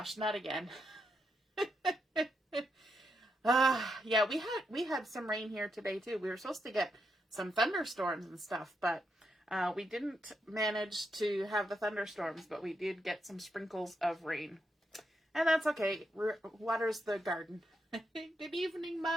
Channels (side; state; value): both; normal; correlation 0.82